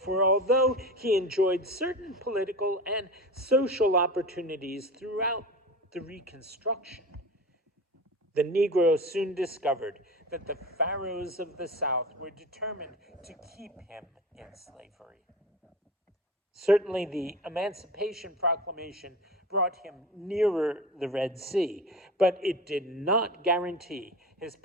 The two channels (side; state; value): both; normal; correlation 0.32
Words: although he enjoyed certain political and social opportunities throughout the Reconstruction, the Negro soon discovered that the Pharaohs of the South were determined to keep him in slavery. Certainly, the Emancipation Proclamation brought him nearer the Red Sea, but it did not guarantee his